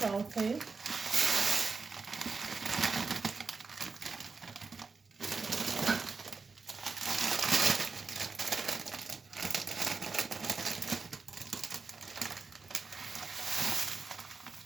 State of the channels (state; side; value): quieter; left; 4.6 dB